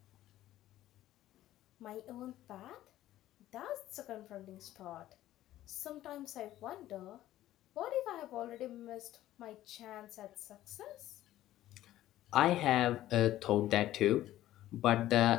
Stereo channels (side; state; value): right; quieter; 14.0 dB